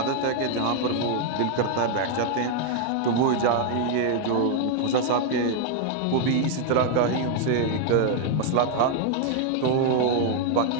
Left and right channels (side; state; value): both; different; correlation 0.00